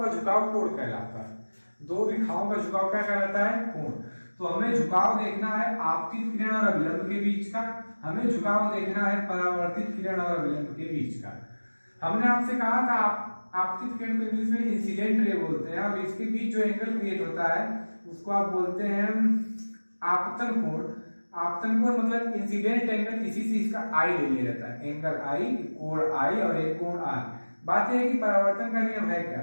झुकाव कोण कहलाता है। दो रेखाओं का झुकाव क्या कहलाता है, कोण। तो हमें झुकाव देखना है आपतित किरण और अभिलंब के बीच का, हमें झुकाव देखना है परावर्तित किरण और अभिलंब के बीच का। हमने आपसे कहा था आपतित किरण को इंग्लिश में इंसिडेंट रे बोलते हैं और इसके बीच जो एंगल क्रिएट होता है उसको आप बोलते हैं आपतन कोण। आपतन कोण मतलब इंसिडेंट एंगल, इसी से इसका आई ले लिया जाता है, एंगल आई, कोण आई और एक कोण आर। बात यह है कि परावर्तन का नियम है क्या,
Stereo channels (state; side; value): inverted; both; correlation -1.00